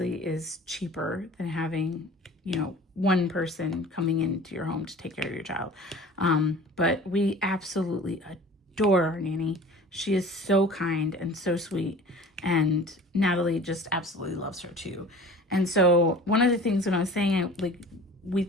is cheaper than having, you know, one person coming into your home to take care of your child. But we absolutely adore our nanny. She is so kind and so sweet, and Natalie just absolutely loves her too. And so one of the things when I was saying we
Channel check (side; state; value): both; normal; correlation 0.43